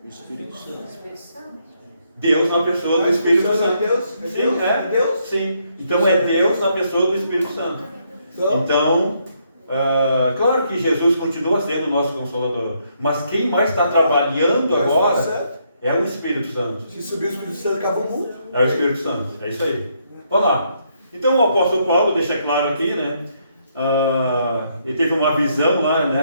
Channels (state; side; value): inverted; both; correlation -0.74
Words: O Espírito Santo. Espírito Santo. Deus na pessoa do Espírito Santo. Deus? Sim, É Deus? Sim. Então é Deus na pessoa do Espírito Santo. Então, claro que Jesus continua sendo o nosso Consolador. Mas quem mais está trabalhando agora é o Espírito Santo. Se subir o Espírito Santo, acaba o mundo. É o Espírito Santo. É isso aí. Vamos lá. Então o apóstolo Paulo deixa claro aqui, né? Ele teve uma visão lá,